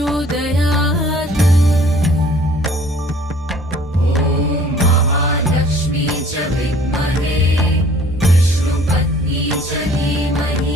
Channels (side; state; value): both; normal; correlation 0.54